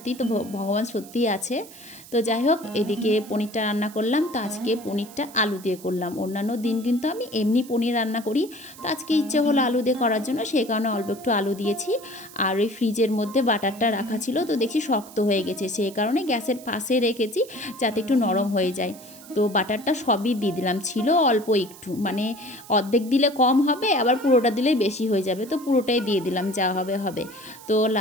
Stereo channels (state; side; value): noise; right; hiss, 19 dB below the sound